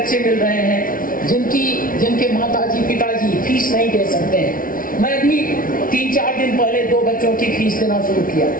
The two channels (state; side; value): late; right; 0.40 ms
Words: मिल रहे हैं जिनके माताजी पिताजी फीस नहीं दे सकते हैं। मैं भी 3-4 दिन पहले 2 बच्चों की फीस देना शुरू किया